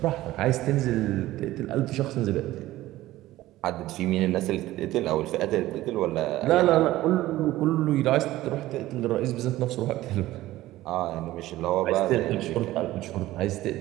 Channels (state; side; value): quieter; left; 16.1 dB